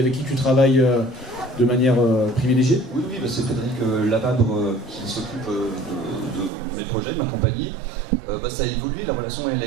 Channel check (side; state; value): left; drops out; at 6.5 s